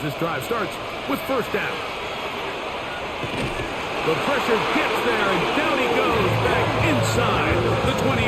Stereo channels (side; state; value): both; identical; correlation 1.00